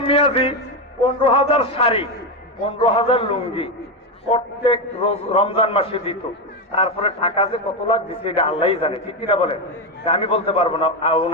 মিয়াজি 15,000 শাড়ি, 15,000 লুঙ্গি প্রত্যেক রমজান মাসে দিত। তারপরে টাকা যে কত লাখ দিচ্ছে এটা আল্লাহই জানে, ঠিক কিনা বলেন? আমি বলতে পারবো না,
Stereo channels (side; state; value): both; normal; correlation 0.10